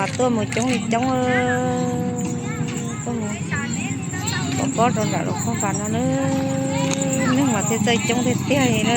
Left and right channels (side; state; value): both; identical; correlation 1.00